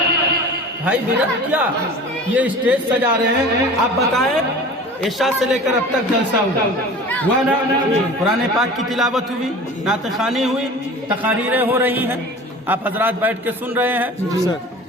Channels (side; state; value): both; normal; correlation 0.39